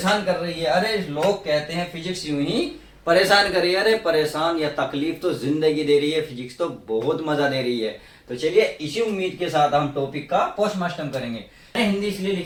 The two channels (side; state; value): both; identical; correlation 1.00